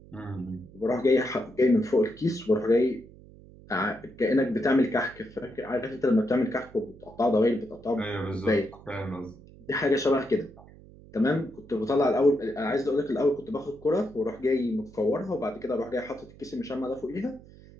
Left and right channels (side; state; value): right; noise; hum, 21 dB below the sound